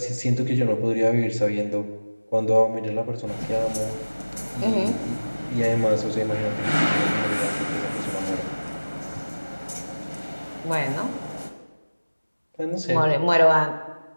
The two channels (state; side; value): inverted; both; correlation -1.00